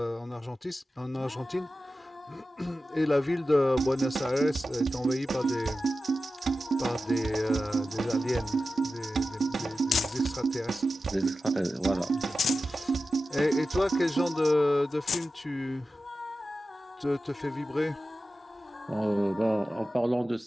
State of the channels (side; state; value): both; normal; correlation 0.93